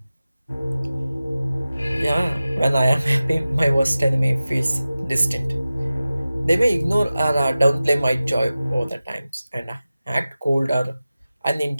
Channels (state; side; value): inverted; both; correlation -0.96